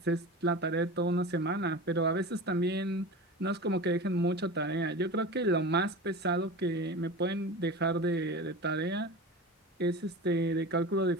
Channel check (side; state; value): both; normal; correlation 0.31